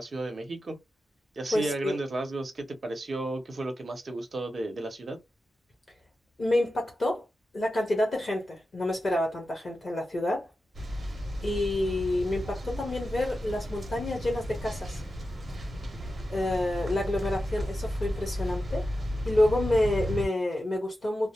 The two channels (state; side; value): normal; both; correlation 0.91